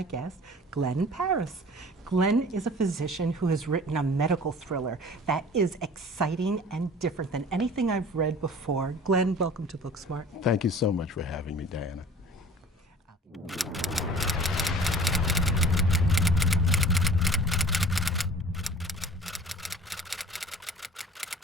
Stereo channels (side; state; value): both; normal; correlation 0.45